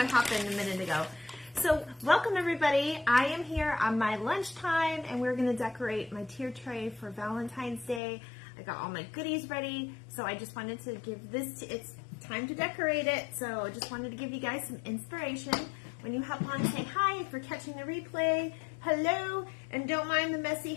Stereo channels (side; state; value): right; drops out; at 8.0 s